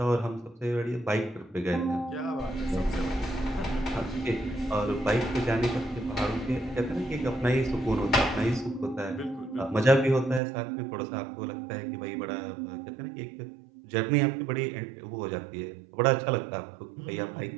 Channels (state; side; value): drops out; left; at 10.4 s